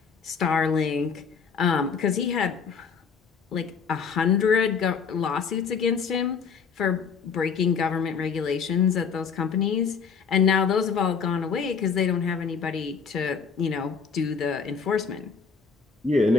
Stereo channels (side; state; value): right; quieter; 6.0 dB